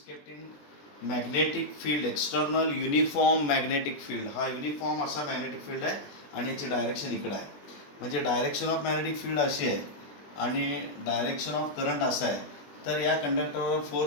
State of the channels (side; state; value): right; late; 21 ms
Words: kept in magnetic field, external uniform magnetic field. हा uniform असा magnetic field आहे आणि याची direction इकडं आहे. म्हणजे direction of magnetic field अशी आहे आणि डायरेक्शन ऑफ करंट असा आहे. तर या कंडक्टरवर